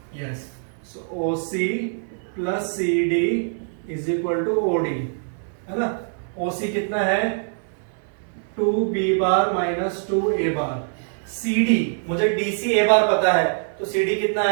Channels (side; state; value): left; silent; digital silence